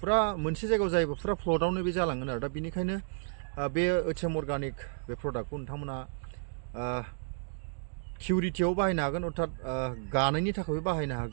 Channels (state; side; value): silent; left; digital silence